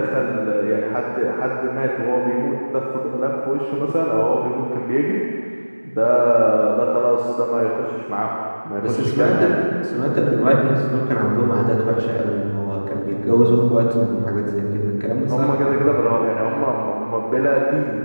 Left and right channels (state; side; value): inverted; both; correlation -1.00